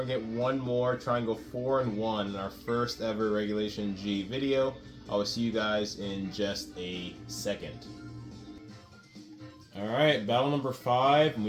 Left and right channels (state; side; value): identical; both; correlation 1.00